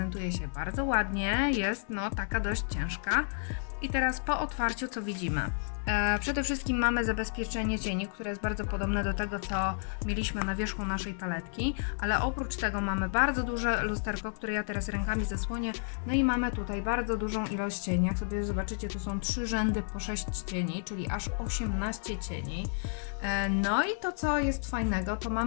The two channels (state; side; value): silent; right; digital silence